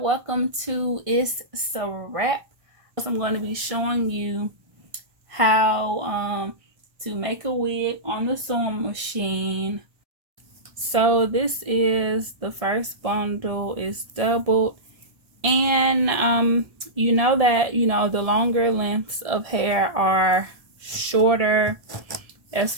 welcome to Itz Sirap. I'm going to be showing you how to make a wig on the sewing machine. So this is the first bundle. It's doubled, and you know that the longer lengths of hair are shorter as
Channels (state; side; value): late; left; 1.7 ms